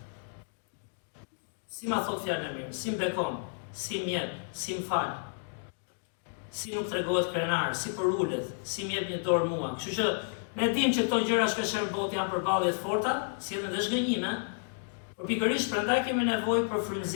Si ma thot fjalën e mirë, si mbekon, si mjep, si m'fal, si nuk tregohet krenar, si përullet, si m'jep një dorë mua. Kështu që ne dim që këto gjëra shpeshherë në botë janë përballje të forta, sillen dhe zhgënjime. Por pikërisht prandaj kemi nevojë për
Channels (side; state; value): right; silent; digital silence